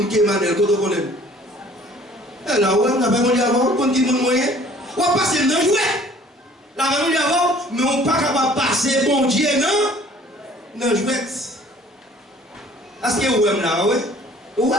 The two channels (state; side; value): normal; both; correlation 0.53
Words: qui est Emmanuel? Quand on connaît? Et là, on a fait mon Dieu avant. On dit mon moyen. On va passer dans le jouet. La mon Dieu avant, mais on n'est pas capable de passer bon Dieu dans le jouet. Est-ce que vous aimez là, oui? Oui.